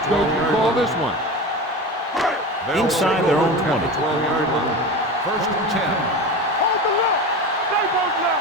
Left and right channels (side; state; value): both; normal; correlation 0.27